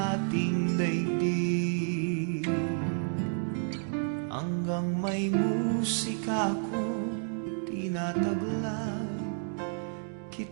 ating daigdig, hanggang may musika akong tinataglay,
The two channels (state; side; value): silent; left; 57 dB below the other